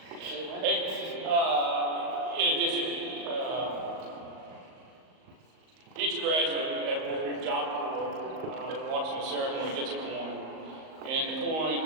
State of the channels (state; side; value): late; left; 38 ms